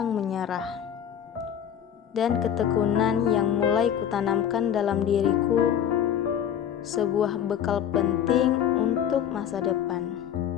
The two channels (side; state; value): right; quieter; 9.4 dB